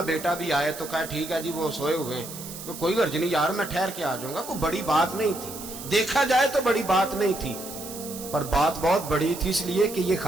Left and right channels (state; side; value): noise; right; hiss, 11 dB below the sound